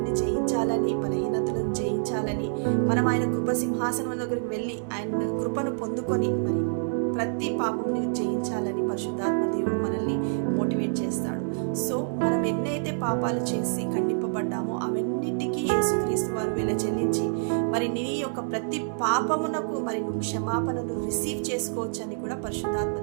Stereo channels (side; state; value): left; silent; digital silence